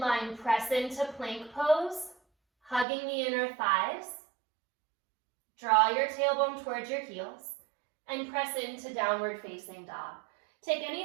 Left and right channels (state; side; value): drops out; left; at 2.9 s